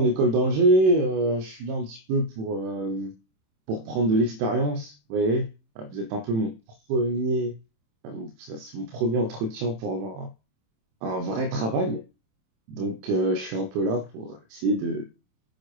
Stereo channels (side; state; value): left; late; 27 ms